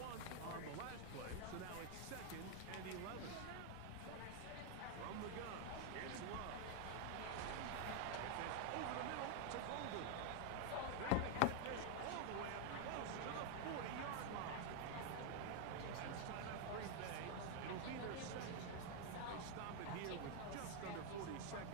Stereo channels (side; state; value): both; different; correlation 0.01